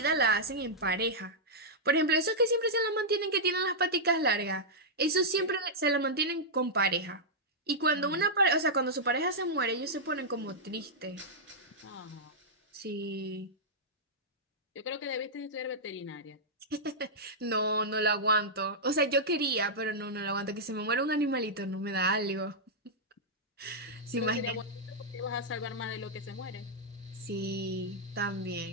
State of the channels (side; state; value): both; normal; correlation -0.09